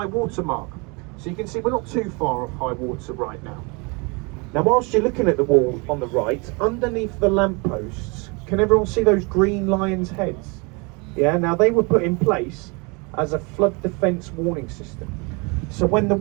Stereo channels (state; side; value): quieter; left; 30.1 dB